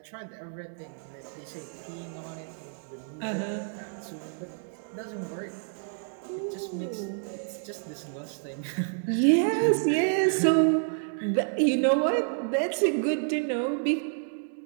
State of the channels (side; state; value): left; silent; 58 dB below the other